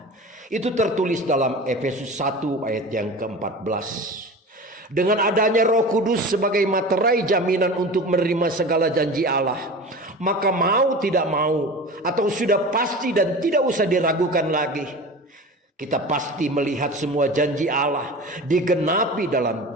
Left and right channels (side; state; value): both; normal; correlation 0.34